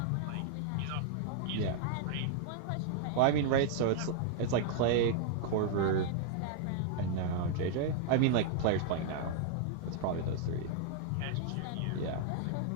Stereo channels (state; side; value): different; both; correlation -0.01